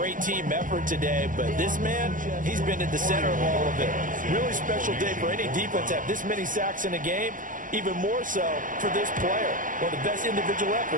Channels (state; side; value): late; left; 0.38 ms